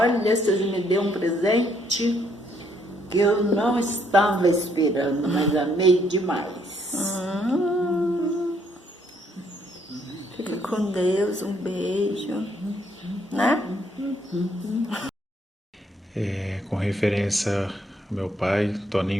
vocês me deu um presente que eu não estava esperando, mas amei demais. Fica com Deus, um beijo, né? Com referência ao meu pai,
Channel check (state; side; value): normal; both; correlation 0.70